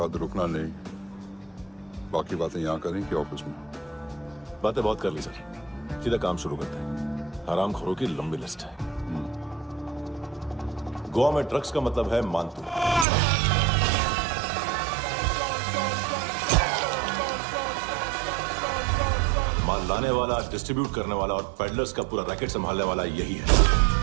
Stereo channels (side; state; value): left; drops out; at 13.1 s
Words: रुकना नहीं। बाकी बातें यहाँ करें कि ऑफिस में? बातें बहुत कर ली सर, सीधा काम शुरू करते हैं। हरामखोरों की लंबी लिस्ट है। गोवा में ड्रग्स का मतलब है मानतू। माल लाने वाला, डिस्ट्रीब्यूट करने वाला और पेडलर्स का पूरा रैकेट संभालने वाला यही है।